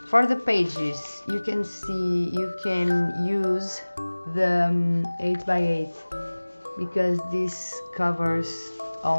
For the pages, you can see you can use the 8x8 because this covers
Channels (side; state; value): both; inverted; correlation -1.00